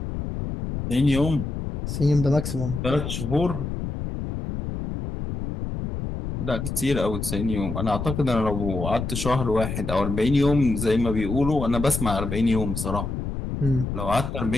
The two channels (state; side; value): noise; left; rumble, 5 dB below the sound